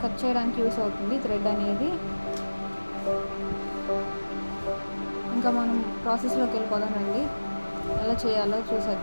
కట్ చేయడానికి యూస్ అవుతుంది థ్రెడ్ అనేది. ఇంకా మనం ప్రాసెస్లోకి వెళ్ళిపోదామండి. ఎలా చేయాలో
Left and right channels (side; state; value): both; inverted; correlation -1.00